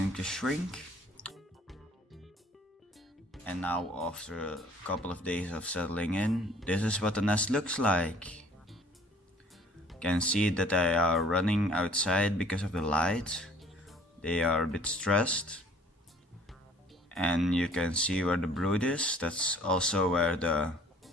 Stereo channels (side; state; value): both; normal; correlation 0.55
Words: to shrink. And now, after a couple of days of settling in, this is what the nest looks like. You can see that they are running outside because of the light. They are a bit stressed. And you can see where the brood is. That's also where the